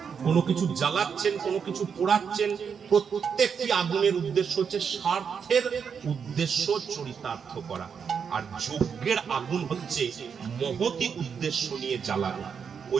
কোনো কিছু জ্বালাচ্ছেন, কোনো কিছু পোড়াচ্ছেন, প্রত্যেকটি আগুনের উদ্দেশ্য হচ্ছে স্বার্থের উদ্দেশ্য চরিতার্থ করা। আর যজ্ঞের আগুন হচ্ছে মহতি উদ্দেশ্য নিয়ে জ্বালানো।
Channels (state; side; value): quieter; left; 6.7 dB